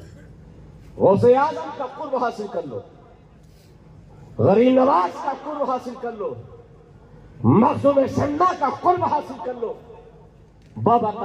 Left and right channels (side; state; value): both; identical; correlation 1.00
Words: गौसे आजम का कुर्ब हासिल कर लो, गरीब नवाज का कुर्ब हासिल कर लो, मखदूम सन्ना का कुर्ब हासिल कर लो, बाबा